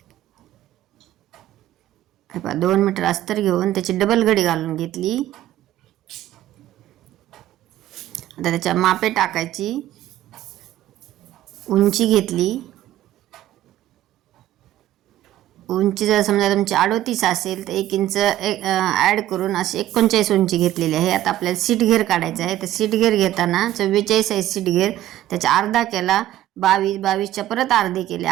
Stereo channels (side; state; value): left; quieter; 13.4 dB